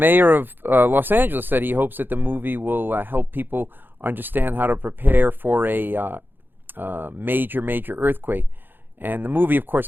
of Los Angeles said he hopes that the movie will help people understand how to prepare for a major earthquake. And the movie, of course,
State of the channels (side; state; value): left; late; 0.097 ms